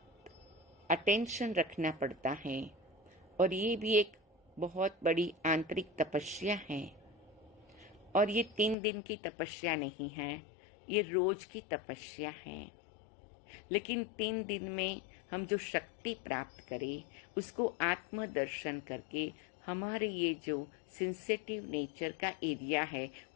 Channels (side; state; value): right; drops out; at 8.8 s